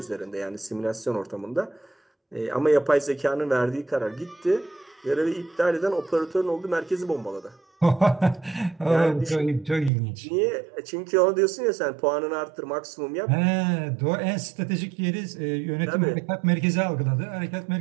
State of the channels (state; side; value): drops out; left; at 9.9 s